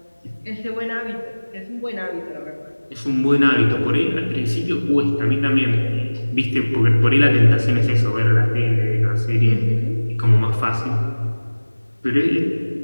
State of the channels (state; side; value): inverted; both; correlation -1.00